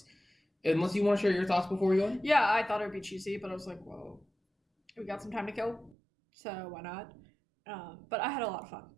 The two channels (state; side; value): drops out; left; at 6.0 s